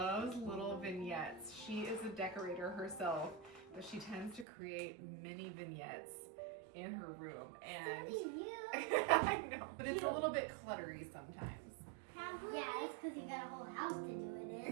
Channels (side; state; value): left; drops out; at 4.5 s